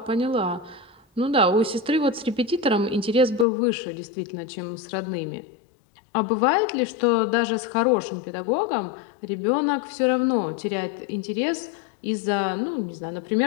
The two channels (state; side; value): drops out; right; at 3.5 s